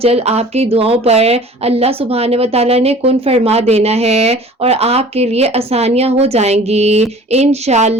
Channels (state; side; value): normal; both; correlation 0.46